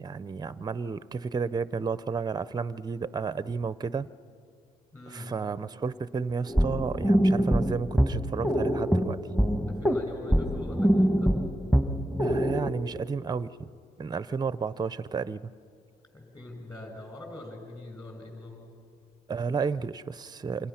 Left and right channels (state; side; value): normal; both; correlation 0.88